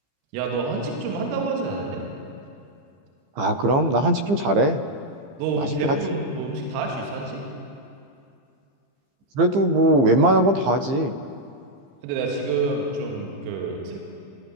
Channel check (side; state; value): left; late; 15 ms